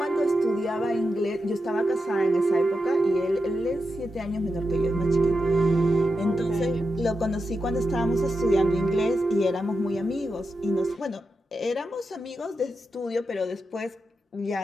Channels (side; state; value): both; normal; correlation 0.88